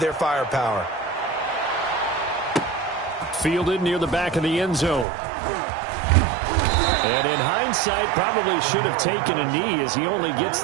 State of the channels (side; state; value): left; drops out; at 5.1 s